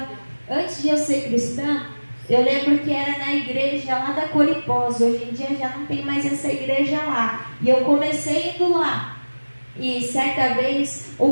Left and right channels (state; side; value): inverted; both; correlation -1.00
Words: Antes de eu ser cristã, eu lembro que era na igreja lá da Coripós. Hoje em dia já não tem mais essa igreja lá. E eu comecei indo lá. E certa vez